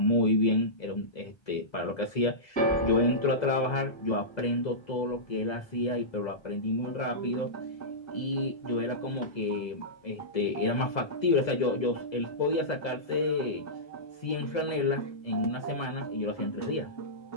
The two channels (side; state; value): right; late; 2.0 ms